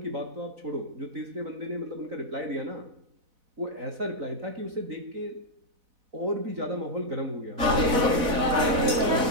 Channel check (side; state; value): left; late; 4.0 ms